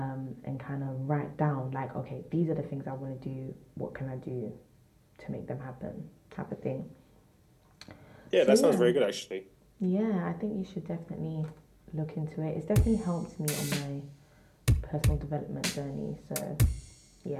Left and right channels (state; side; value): identical; both; correlation 1.00